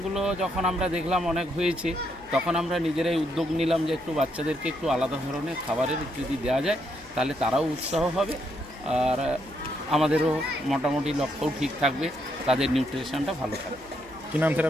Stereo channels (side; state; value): left; noise; hum, 25 dB below the sound